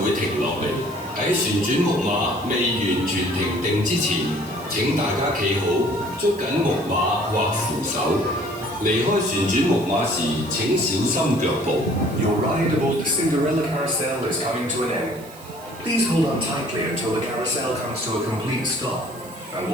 會停落嚟。喺旋轉木馬未完全停定之前，請大家企好，捉緊木馬或扶手。離開旋轉木馬時，請小心腳步。Your ride aboard the Cinderella carousel is coming to an end. Please hold on tightly until the carousel comes to a complete stop, and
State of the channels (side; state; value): right; noise; hiss, 21 dB below the sound